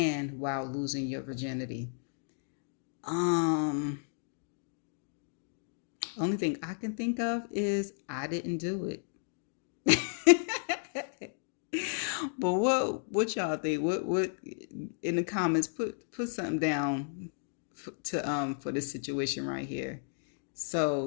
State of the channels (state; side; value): silent; right; digital silence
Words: while losing your virginity. Only thing I can think of is I didn't do it. But what y'all think? What in the comments? Put something down for this situation right here.